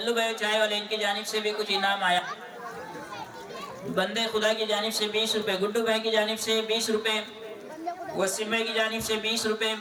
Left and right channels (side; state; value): both; identical; correlation 1.00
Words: भाई चाय वाले इनकी जानिब से भी कुछ इनाम आया। बंदे खुदा की जानिब से 20 रुपये, गुड्डू भाई की जानिब से 20 रुपये, वसीम भाई की जानिब से 20 रुपये,